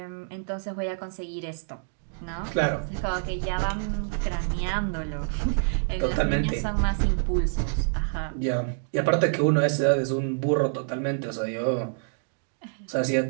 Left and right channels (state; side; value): silent; left; digital silence